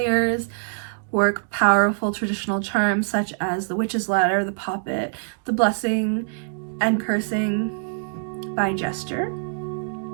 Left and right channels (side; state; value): left; silent; digital silence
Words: work powerful traditional charms such as the witch's ladder, the poppet, the blessing, and cursing by gesture.